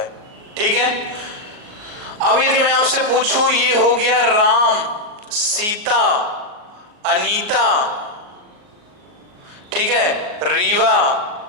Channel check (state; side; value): late; left; 38 ms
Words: ठीक है। अब यदि मैं आपसे पूछूं, ये हो गया राम, सीता, अनीता, ठीक है, रीवा,